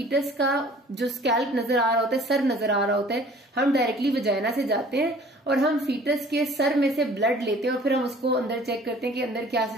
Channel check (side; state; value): both; normal; correlation 0.50